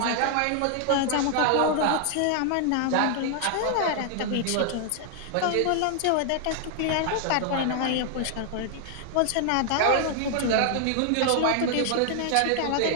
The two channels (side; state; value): both; different; correlation 0.00